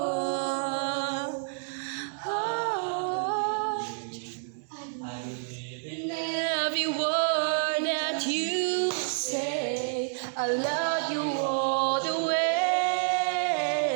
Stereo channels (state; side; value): silent; left; digital silence